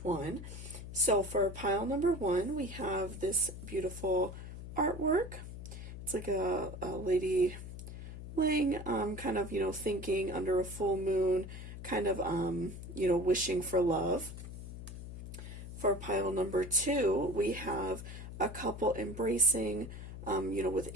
one. So for pile number 1, we have this beautiful artwork. It's like a lady laying, kind of, thinking under a full moon, kind of, wishing for love. For pile number 2, we have a couple embracing, with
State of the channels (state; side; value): noise; left; hum, 10 dB below the sound